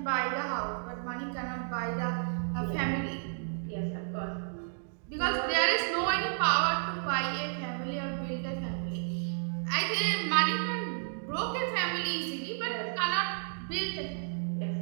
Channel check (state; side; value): silent; left; digital silence